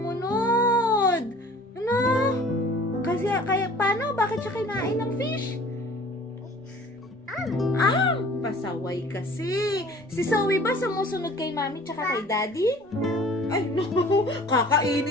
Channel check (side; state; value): both; normal; correlation 0.48